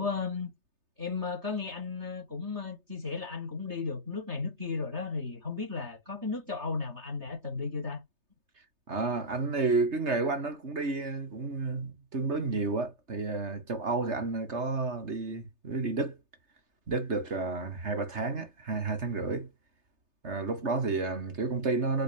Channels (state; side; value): late; left; 3.3 ms